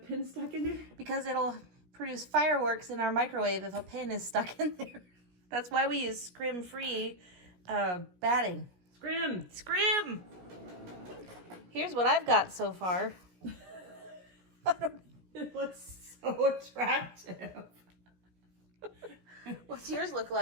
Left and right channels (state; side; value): late; left; 17 ms